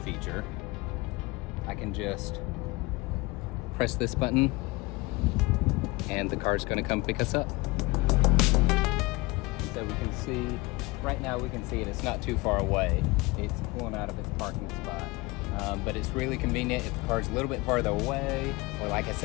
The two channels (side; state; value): right; quieter; 23.2 dB